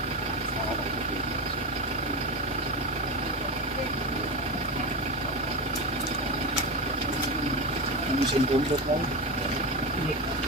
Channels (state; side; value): normal; both; correlation 0.19